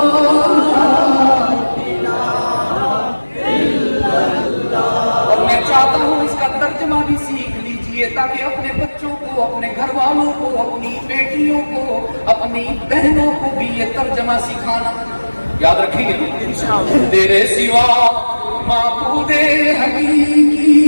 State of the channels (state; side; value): inverted; both; correlation -1.00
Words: اور میں چاہتا ہوں اس کا ترجمہ بھی سیکھ لیجئے تاکہ اپنے بچوں کو، اپنے گھر والوں کو، اپنی بیٹیوں کو، اپنی بہنوں کو بھی یہ ترجمہ سکھانا۔ یاد رکھیں گے تیرے سوا معبود حقیقی